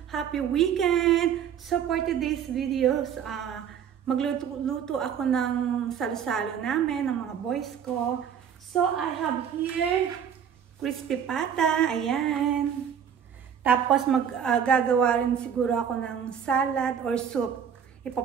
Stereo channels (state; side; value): quieter; left; 8.2 dB